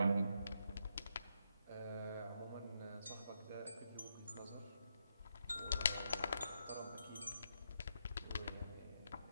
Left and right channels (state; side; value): inverted; both; correlation -0.81